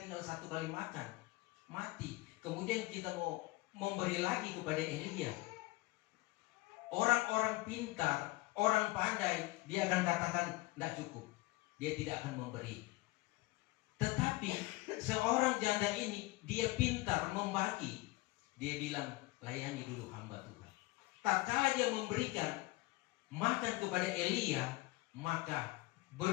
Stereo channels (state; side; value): quieter; right; 20.7 dB